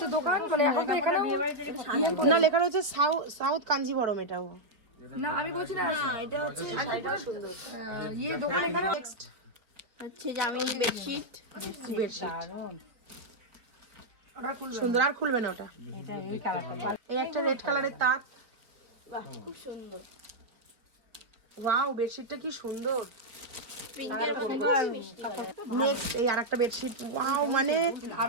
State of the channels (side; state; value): left; late; 4.5 ms